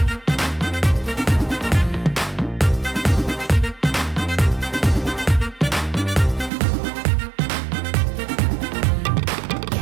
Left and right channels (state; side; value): drops out; left; at 6.5 s